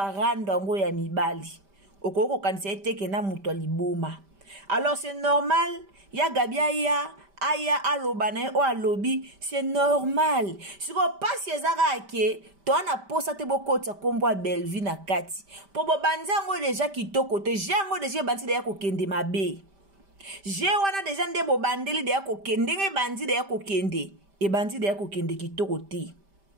ngo ya mibali. Okoko kanisa eteke na muto liboma. Alors c'est normal, ya Gabi aya alobana o alobi, c'est normal. Si ko pasi ezaka ke to ana posa te bokota kombo Belvi na kati. Po bo banza ngo deja kitoko te, jango deja banzi de ya kokende mabe. Je wana deja nde bo bandeli de ya kokende nge banzi de ya kokende. E banzi de ya kokende kitoko te.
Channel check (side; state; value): left; late; 5.1 ms